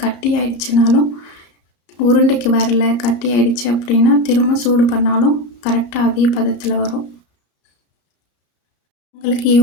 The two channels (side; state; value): right; late; 34 ms